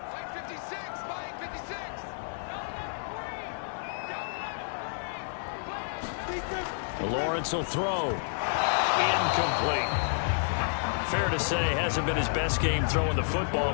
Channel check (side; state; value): right; silent; digital silence